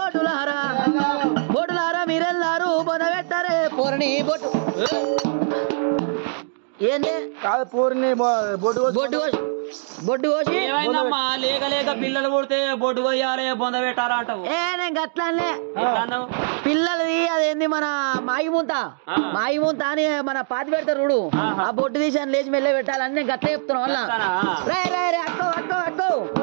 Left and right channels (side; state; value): left; silent; digital silence